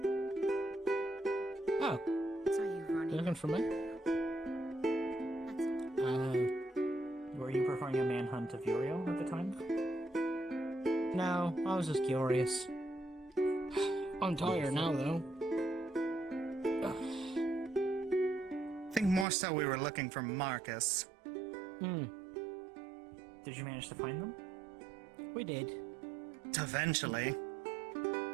Oh, Saw you you running. looking for me? Were you performing a manhunt of Uriel at the time? No, I was just curious. I'm tired now, though. I think more so we were looking for Marcus. Did you manage to find them? We did. Eventually.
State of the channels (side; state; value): left; drops out; at 19.2 s